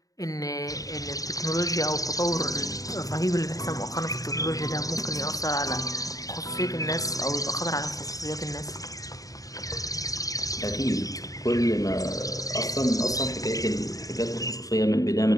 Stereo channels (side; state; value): right; late; 0.17 ms